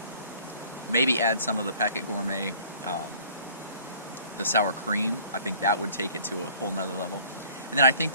maybe add some of the Packet Gourmet the sour cream, I think that would take it to a whole nother level. And then I think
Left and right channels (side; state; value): both; inverted; correlation -0.53